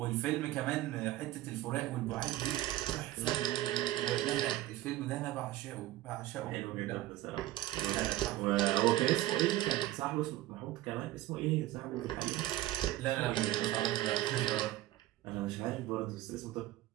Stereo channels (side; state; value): left; quieter; 15.8 dB